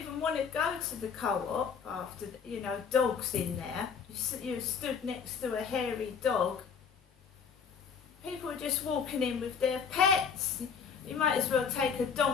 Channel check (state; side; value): quieter; right; 6.6 dB